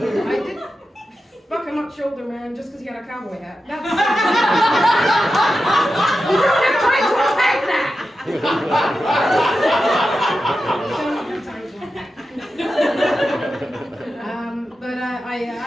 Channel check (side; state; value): both; normal; correlation 0.91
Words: fuck a much older man just because he had a cowboy hat. That's... You don't have time to unpack that!